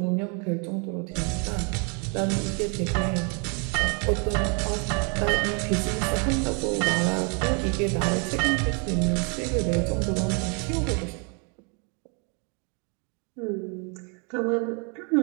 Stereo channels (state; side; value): quieter; left; 36.2 dB